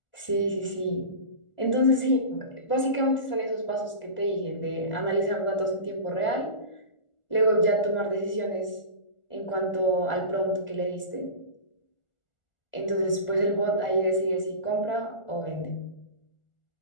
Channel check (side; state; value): right; late; 1.4 ms